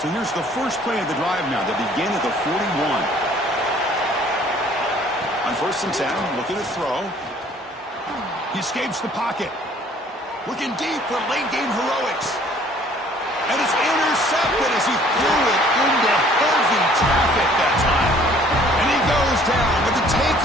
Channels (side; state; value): both; normal; correlation 0.56